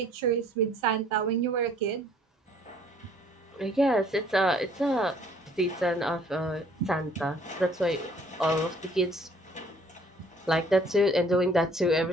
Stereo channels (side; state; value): both; normal; correlation 0.58